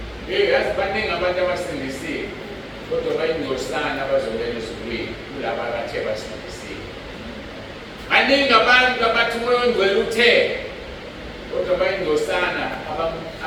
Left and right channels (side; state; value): both; identical; correlation 1.00